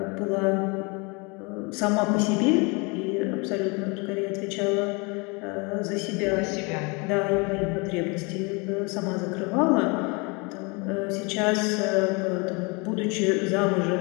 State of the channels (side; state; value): right; quieter; 29.7 dB